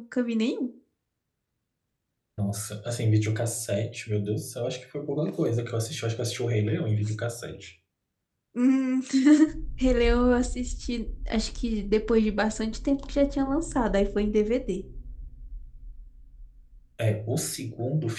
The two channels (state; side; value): identical; both; correlation 1.00